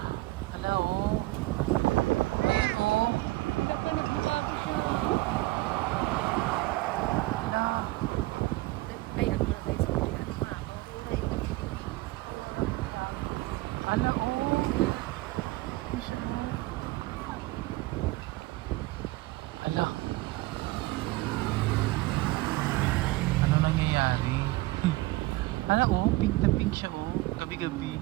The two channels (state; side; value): quieter; left; 20.1 dB